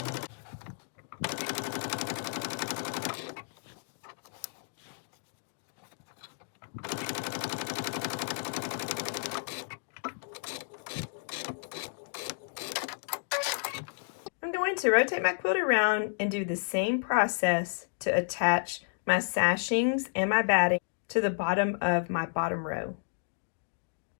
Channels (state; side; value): silent; right; digital silence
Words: To rotate my quilt around and do the same process to attach my sashings and my batting to the bottom of my bottom row.